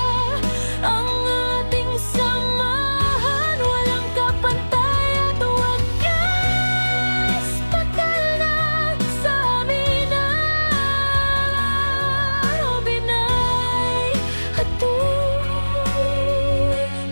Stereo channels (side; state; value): both; inverted; correlation -1.00